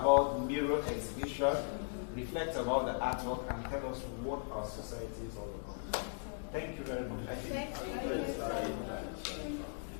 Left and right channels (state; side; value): silent; right; digital silence